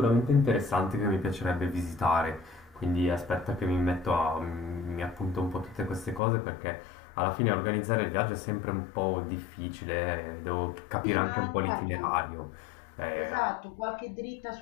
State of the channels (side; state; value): right; drops out; at 6.2 s